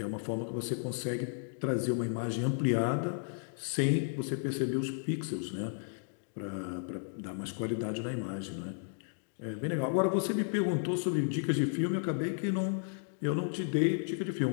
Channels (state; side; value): silent; right; digital silence